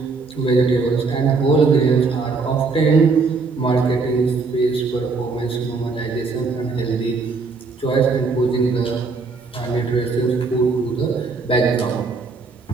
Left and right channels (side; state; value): left; quieter; 4.3 dB